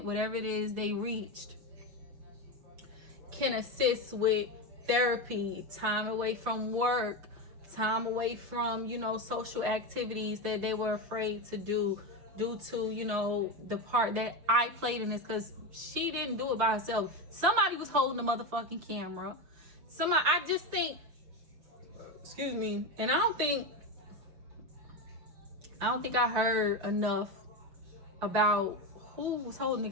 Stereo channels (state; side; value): late; left; 6.6 ms